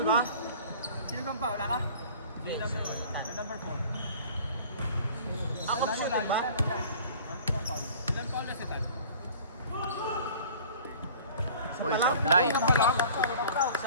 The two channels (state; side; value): inverted; both; correlation -0.46